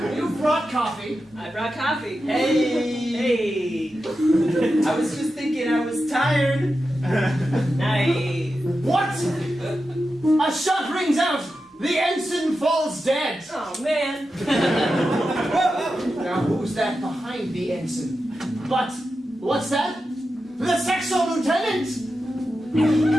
You brought coffee. I brought coffee. Hey! I was just thinking I was tired. Nice. What? A shot rings out. The ensign falls dead. Oh, man. Now who's that behind the ensign? But what's that? The Sexo lieutenant.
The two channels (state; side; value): normal; both; correlation 0.90